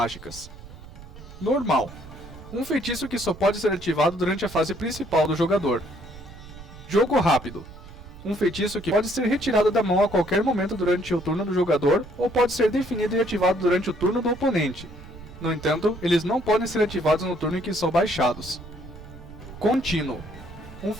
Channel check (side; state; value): right; noise; rumble, 17 dB below the sound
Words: Normal: um feitiço que só pode ser ativado durante a fase principal do jogador. Jogo rápido: um feitiço que pode ser retirado da mão a qualquer momento durante o turno do jogador ou pode ser definido e ativado durante o turno do oponente. No entanto, eles não podem ser ativados no turno em que são baixados. Contínuo: um